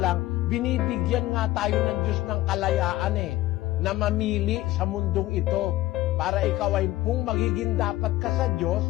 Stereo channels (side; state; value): right; quieter; 16.7 dB